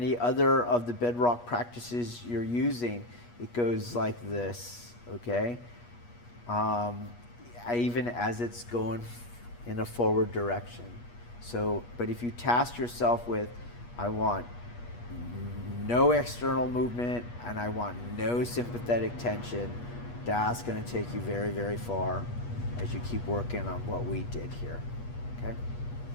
other of the bedrock practices you're using, it goes like this, okay? Even as it's going in a forward direction. So, but if you task yourself with, I want no external movement and I want no sympathetic tension, that's going to take you very, very far as you keep working on what we did here, okay?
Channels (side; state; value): right; late; 8.3 ms